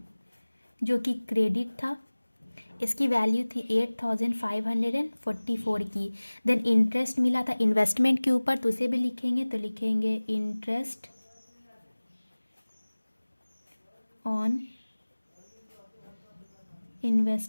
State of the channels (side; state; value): both; inverted; correlation -1.00